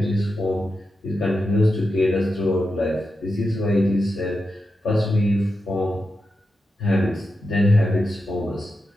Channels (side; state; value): both; normal; correlation 0.89